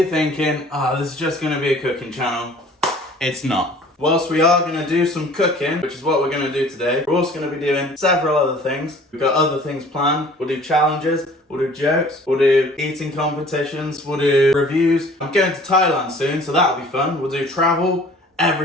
thinking, this is just going to be a cooking channel, it's not. Whilst we are going to do some cooking, which is what we're going to do today, we're also going to be doing several other things. We've got other things planned. We'll do challenges, we'll do jokes, we'll do eating competitions, we'll do reviews. I'm going to Thailand soon, so that'll be fun. We'll do travel,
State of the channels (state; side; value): normal; both; correlation 0.50